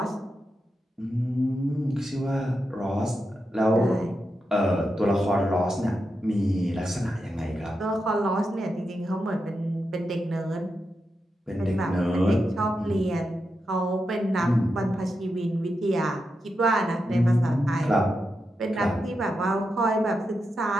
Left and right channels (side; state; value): both; normal; correlation 0.87